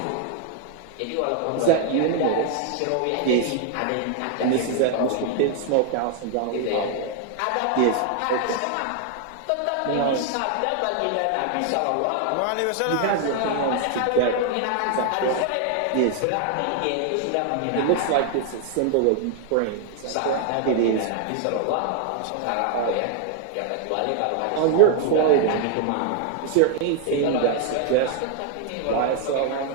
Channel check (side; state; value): both; different; correlation 0.00